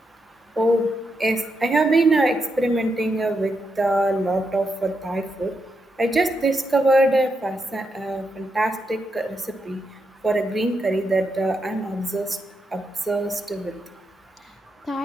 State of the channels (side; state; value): both; normal; correlation 0.83